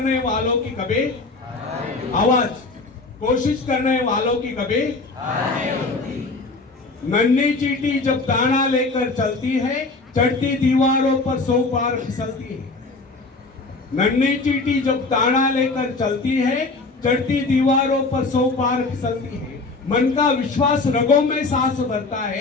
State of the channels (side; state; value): right; quieter; 3.6 dB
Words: वालों की कभी आवाज, कोशिश करने वालों की कभी नन्ही चींटी जब दाना लेकर चलती है, चढ़ती दीवारों पर 100 बार फिसलती है। नन्ही चींटी जब दाना लेकर चलती है, चढ़ती दीवारों पर 100 बार फिसलती है। मन का विश्वास रगों में सांस भरता